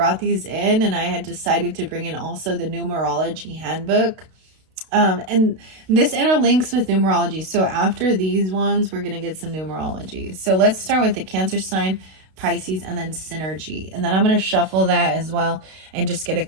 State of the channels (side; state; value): left; late; 32 ms